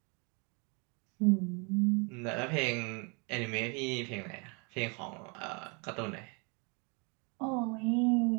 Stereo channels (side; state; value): left; quieter; 32.4 dB